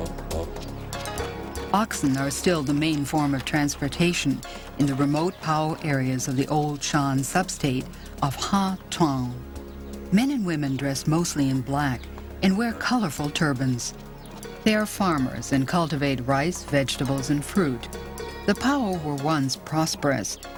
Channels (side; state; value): both; identical; correlation 1.00